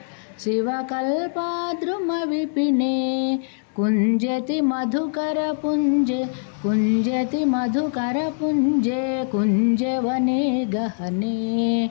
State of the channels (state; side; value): silent; right; digital silence